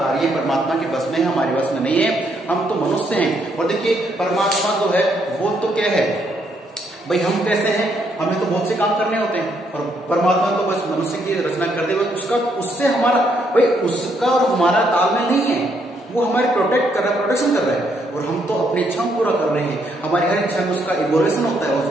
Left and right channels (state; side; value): normal; both; correlation 0.73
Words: परमात्मा के बस में है, हमारे बस में नहीं है। हम तो मनुष्य हैं। और देखिए परमात्मा जो है वो तो क्या है भाई, हम कैसे हैं? हमें तो बहुत से काम करने होते हैं, और परमात्मा तो बस मनुष्य की रचना कर दे, उसका उससे हमारा भाई, उसका और हमारा तालमेल नहीं है। वो हमारे प्रोटेक्ट कर रहा है, प्रोटेक्शन कर रहा है, और हम तो अपनी इच्छाओं पूरा कर रहे हैं। हमारी हर इच्छा में उसका इवोल्यूशन होता है,